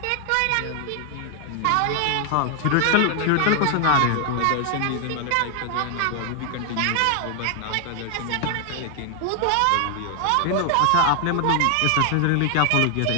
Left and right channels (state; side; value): different; both; correlation 0.00